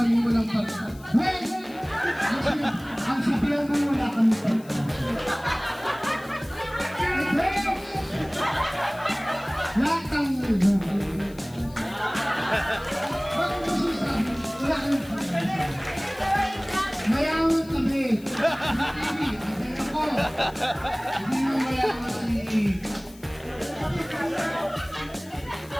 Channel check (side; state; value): left; noise; hiss, 23 dB below the sound